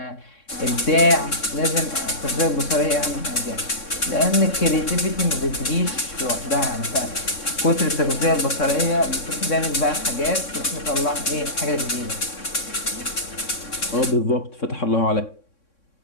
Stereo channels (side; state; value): right; late; 3.6 ms